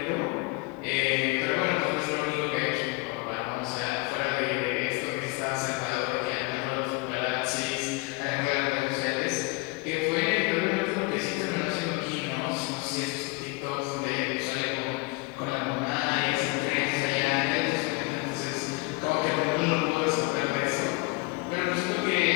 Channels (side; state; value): right; quieter; 26.8 dB